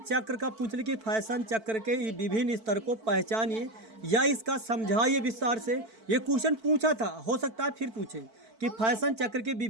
का पूछ ले कि फैशन चक्र के विभिन्न स्तर को पहचानिए या इसका समझाइए विस्तार से। ये क्वेश्चन पूछा था, हो सकता है फिर पूछे कि फैशन चक्र के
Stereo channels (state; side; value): late; left; 4.5 ms